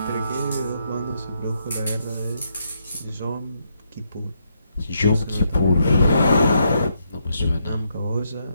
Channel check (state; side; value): inverted; both; correlation -0.78